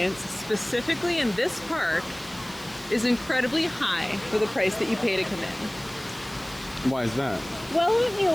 specifically in this park, is incredibly high for the price that you pay to come in. Why is that? Well, let me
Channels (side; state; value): right; noise; hiss, 19 dB below the sound